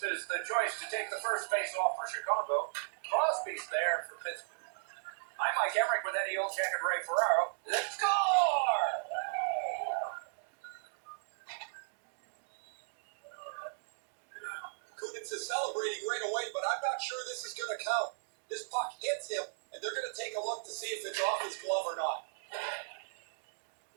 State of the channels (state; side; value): silent; left; digital silence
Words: is the choice to take the first face-off for Chicago. Crosby's there for Pittsburgh. I'm Mike Emmerich with Eddie Olczyk and Ray Ferraro. Let's score! Kunitz is celebrating right away, but I'm not sure this is going to count. This puck hits him, and they're going to take a look to see if it's off his glove or not.